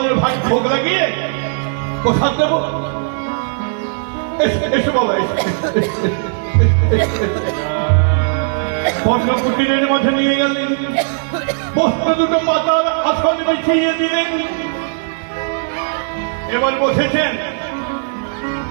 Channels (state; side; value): silent; left; 60 dB below the other